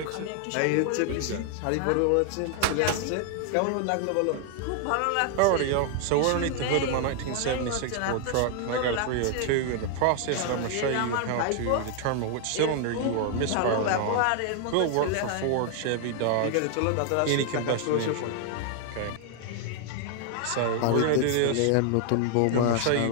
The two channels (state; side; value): different; both; correlation 0.00